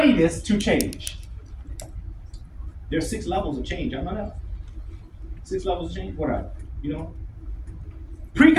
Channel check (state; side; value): identical; both; correlation 1.00